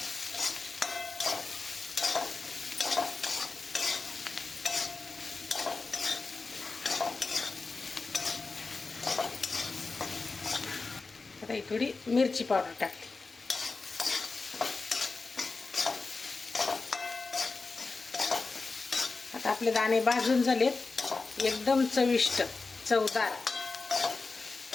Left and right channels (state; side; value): quieter; right; 4.0 dB